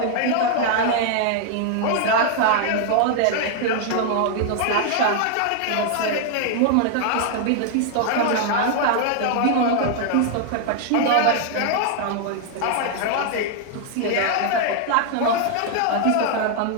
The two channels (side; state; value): both; different; correlation 0.00